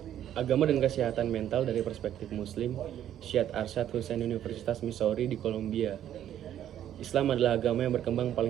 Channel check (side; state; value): left; quieter; 11.0 dB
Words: dan kesehatan mental dari perspektif Muslim, Syed Arsyad Hussein, Universitas Missouri di Columbia. Islam adalah agama yang berkembang